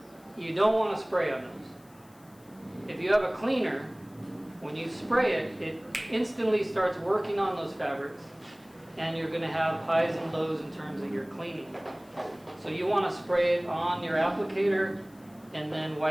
you don't want to spray on those. If you have a cleaner, when you spray it, it instantly starts working on those fabrics, and you're going to have highs and lows in terms of your cleaning. So you want to spray it on your applicator and then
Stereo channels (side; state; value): left; noise; hiss, 29 dB below the sound